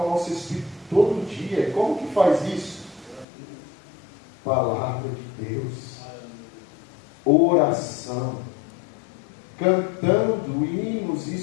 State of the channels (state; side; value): drops out; right; at 3.2 s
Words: nosso espírito todo dia. E como que faz isso? Palavra de Deus, oração, cantando hinos